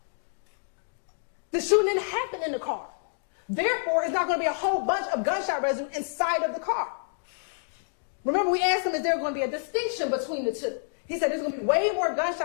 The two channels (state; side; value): silent; right; digital silence